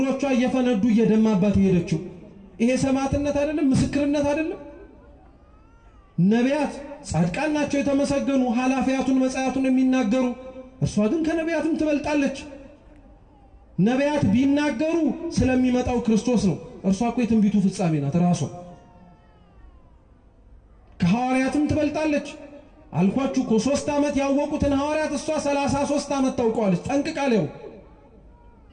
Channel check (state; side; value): identical; both; correlation 1.00